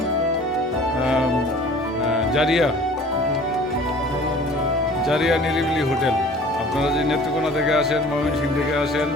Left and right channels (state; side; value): normal; both; correlation 0.47